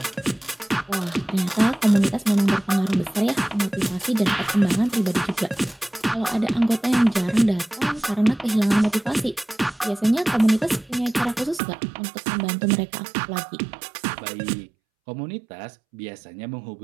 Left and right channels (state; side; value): drops out; left; at 11.6 s